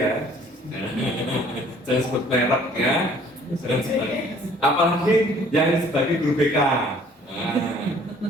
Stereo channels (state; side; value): normal; both; correlation 0.56